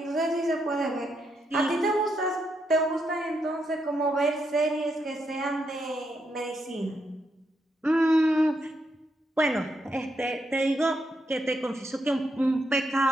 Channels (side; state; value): both; normal; correlation 0.80